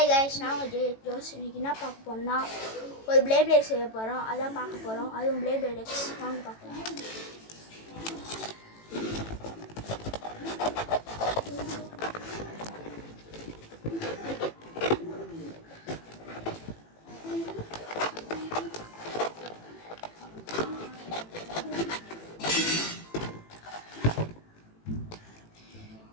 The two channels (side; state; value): right; late; 18 ms